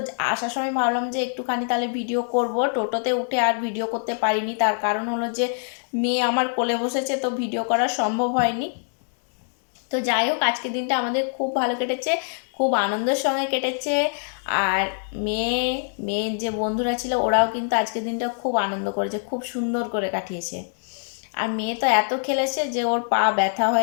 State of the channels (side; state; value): right; silent; digital silence